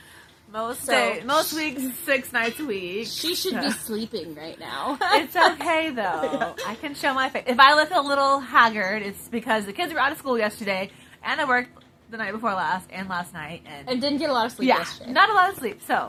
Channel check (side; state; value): both; identical; correlation 1.00